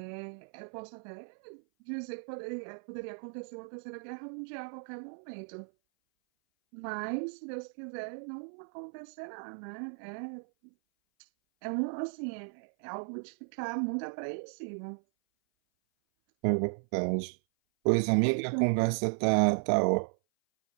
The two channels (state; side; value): silent; left; 55 dB below the other